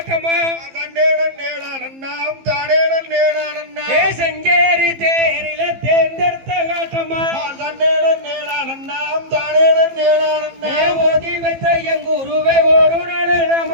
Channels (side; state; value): left; late; 15 ms